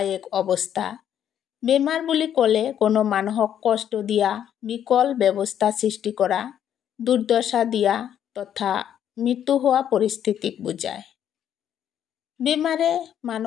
এক অৱস্থা। বেমাৰ বুলি ক'লে কোনো মানুহক কষ্ট দিয়া, বিকল ব্যৱস্থা সৃষ্টি কৰা, দুৰ্দশা দিয়া তথা মৃত্যু হোৱা পৰিস্থিতিক বুজায়। বেমাৰে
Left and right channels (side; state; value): right; quieter; 9.8 dB